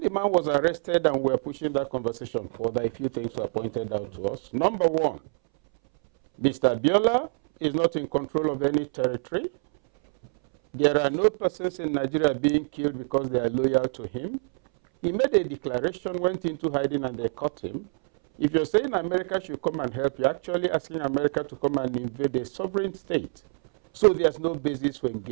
man was arrested and we were pushing that conversation further, a few things were pointed out to us. Number one, Mr. Abiola is not in control of any territory. There are no persons in Nigeria being killed because they are loyal to him. He made a declaration, went into hiding, and they caught him. If you're saying America should come and help, you're actually asking America to come and invade a sovereign state. So there's no basis for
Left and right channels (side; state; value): left; silent; 61 dB below the other